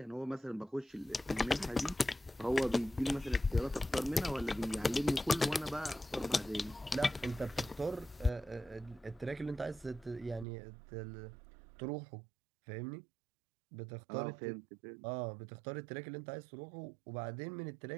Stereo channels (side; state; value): left; drops out; at 10.5 s